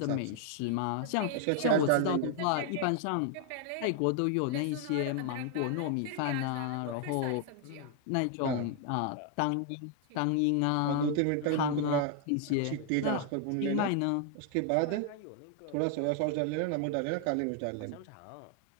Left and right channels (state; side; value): different; both; correlation 0.00